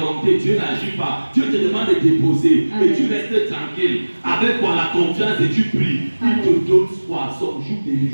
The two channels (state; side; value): inverted; both; correlation -1.00